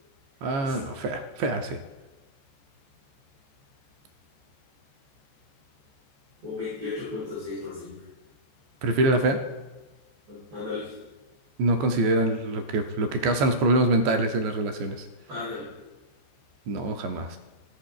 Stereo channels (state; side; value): late; left; 14 ms